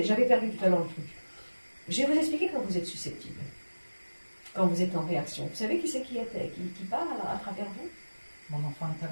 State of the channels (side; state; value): both; inverted; correlation -1.00